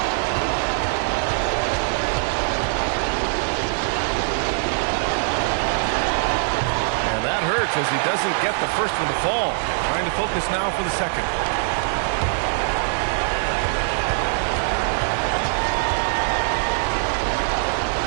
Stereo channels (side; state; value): left; silent; digital silence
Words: As he doesn't get the first one to fall. Trying to focus now for the second.